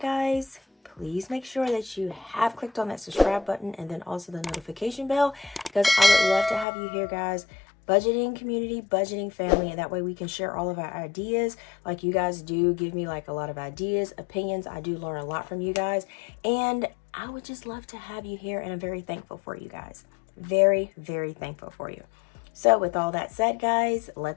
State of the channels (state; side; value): drops out; right; at 6.7 s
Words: guys, please make sure that you have clicked on that subscribe button and then also the notification bell, because I would love to have you here, guys. Budgeting community, budgeting family, and that way we can share all of our ideas. Like, you guys do give me like a lot of ideas, opinions. I do learn a lot from you guys, and I would just love to have you here, and I'm very thankful for you guys. Very, very thankful for you. So with all that said, guys,